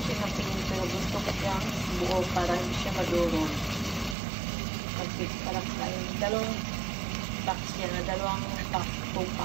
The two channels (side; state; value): left; drops out; at 4.2 s